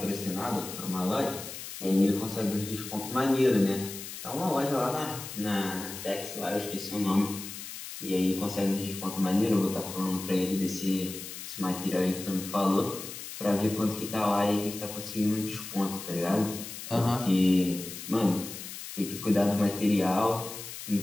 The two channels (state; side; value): noise; left; hiss, 10 dB below the sound